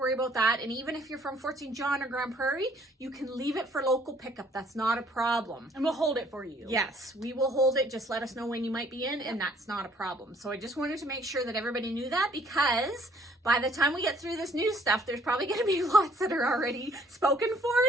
about that. And even if you're from Fort St. John or Grand Prairie, you can leave it for local pickup. That's not a problem. And we'll hold it for you. Yes, we will hold it. Just let us know when you might be in, and that's not a problem. So I just wanted to make sure that everybody knew that, because by the time we get through this new stuff, there's probably going to be lots that are already spoken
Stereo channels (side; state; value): both; normal; correlation 0.60